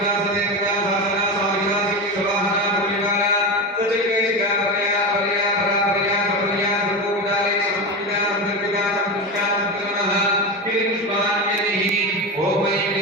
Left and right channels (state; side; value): normal; both; correlation 0.20